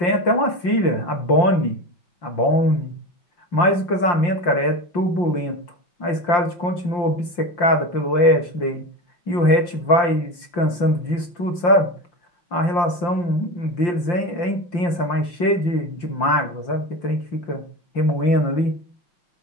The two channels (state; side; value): late; right; 5.7 ms